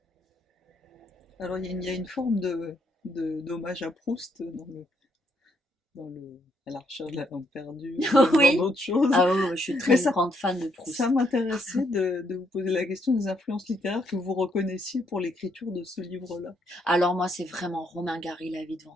Alors il y a une forme d'hommage à Proust à la recherche de la langue perdue, ou même dans Oui. d'autres choses. Ah oui, je suis Mais très grande fan de ça Proust. m'intéressait de vous poser la question des influences littéraires que vous reconnaissiez pour l'écriture de ce livre-là. Alors moi, c'est vraiment Romain Gary, La vie devant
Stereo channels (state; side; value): normal; both; correlation 0.74